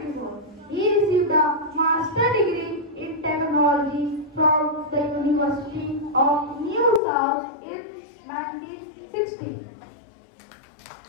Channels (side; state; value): right; drops out; at 7.0 s